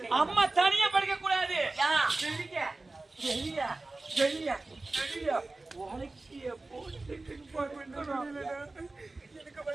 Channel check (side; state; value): left; quieter; 3.2 dB